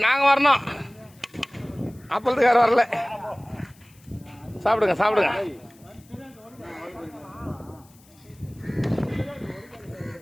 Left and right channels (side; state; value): left; noise; hiss, 28 dB below the sound